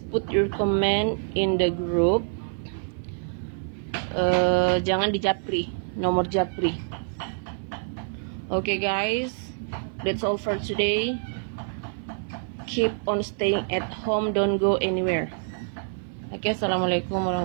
put your comment in the group. Jangan di japri, nomor japri. Okay guys, that's all for today. Keep on staying at home, don't go anywhere. Oke, assalamualaikum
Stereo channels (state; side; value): silent; left; 57 dB below the other